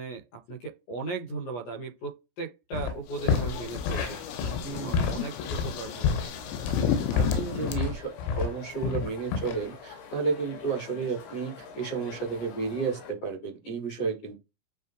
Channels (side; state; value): right; late; 17 ms